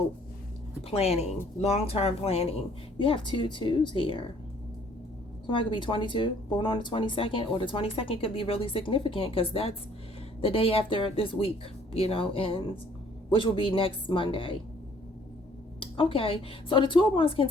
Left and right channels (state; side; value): normal; both; correlation 0.59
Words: planning, long-term planning. You have 2 2s here. Somebody could be 22, born on the 22nd, or the 22nd could be really significant because that's the day after this week, you know, ends, which will be next Monday. Okay, so the 2 of Wands can